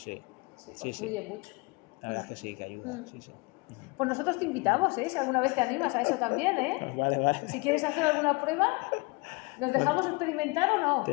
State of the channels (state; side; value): quieter; right; 27.1 dB